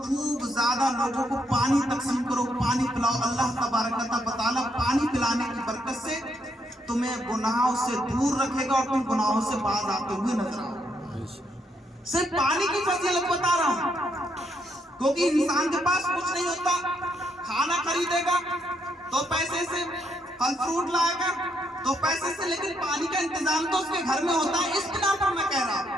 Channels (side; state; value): both; normal; correlation 0.76